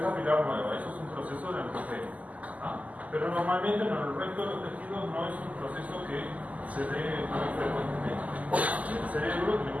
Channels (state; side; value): late; left; 0.074 ms